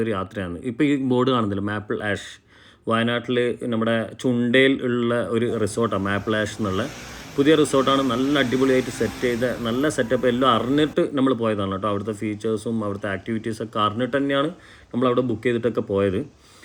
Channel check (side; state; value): both; identical; correlation 1.00